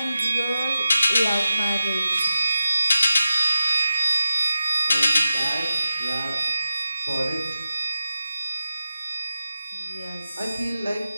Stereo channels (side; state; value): both; inverted; correlation -0.91